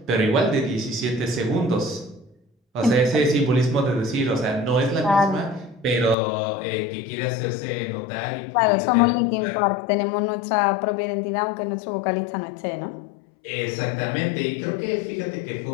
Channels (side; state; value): right; drops out; at 6.2 s